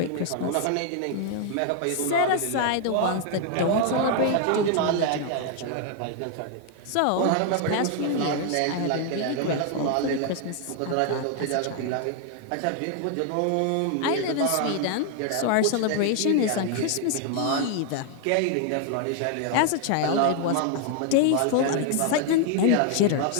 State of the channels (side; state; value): both; different; correlation 0.00